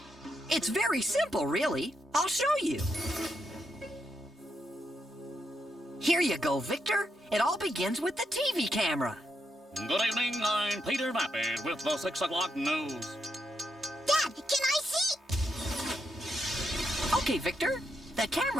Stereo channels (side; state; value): both; normal; correlation 0.81